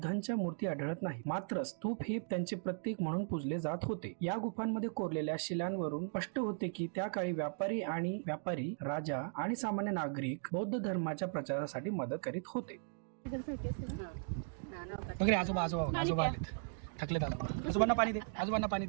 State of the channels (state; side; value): silent; left; digital silence